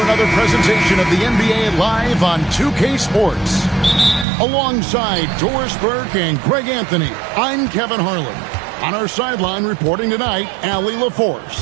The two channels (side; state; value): left; drops out; at 4.2 s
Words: another presentation of the NBA Live on 2K Sports. Alongside Doris Burke and Greg Anthony, I'm Kevin Harlan. On our sideline reporting tonight, Allie